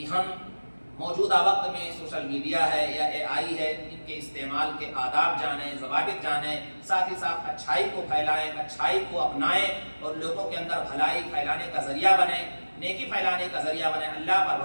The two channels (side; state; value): both; inverted; correlation -1.00